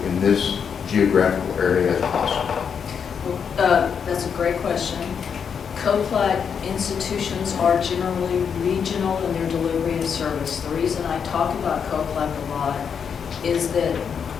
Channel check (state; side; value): quieter; right; 6.9 dB